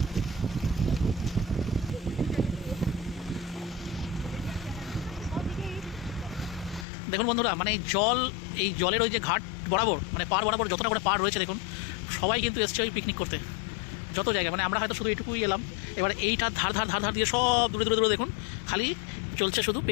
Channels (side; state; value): right; drops out; at 6.9 s